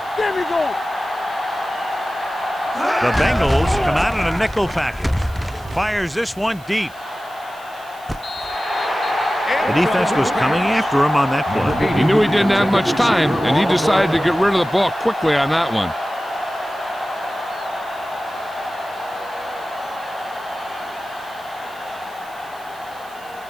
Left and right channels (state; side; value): noise; right; hiss, 24 dB below the sound